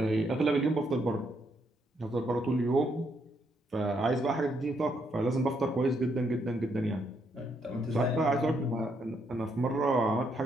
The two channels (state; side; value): normal; both; correlation 0.75